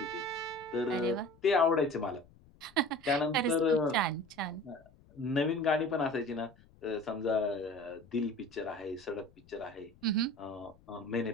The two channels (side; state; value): left; noise; rumble, 27 dB below the sound